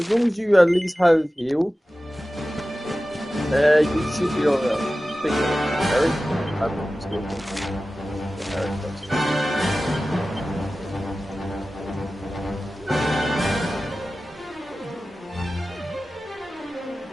long as you at least have heal, you should be alright. I think Eric, I'm not skillful. Eric does.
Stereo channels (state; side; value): normal; both; correlation 0.95